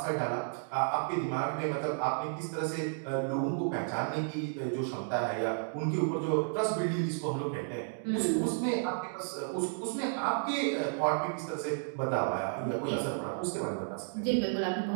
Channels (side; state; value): left; silent; digital silence